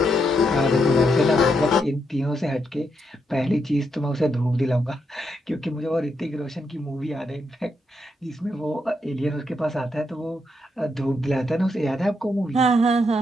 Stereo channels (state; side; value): normal; both; correlation 0.79